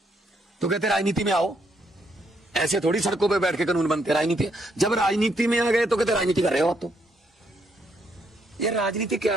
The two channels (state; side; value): normal; both; correlation 0.74